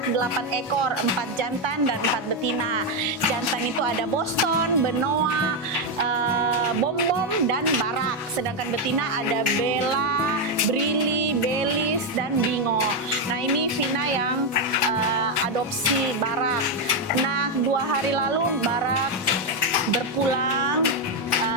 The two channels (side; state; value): both; normal; correlation 0.05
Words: 8 ekor, 4 jantan dan 4 betina. Jantan itu ada Boston, Benoa, Bom Bom dan Barak. Sedangkan betina ada Bella, Brili, Belis dan Bingo. Nah, ini Vina yang adopsi Barak. Nah, 2 hari lalu Barak berpulang.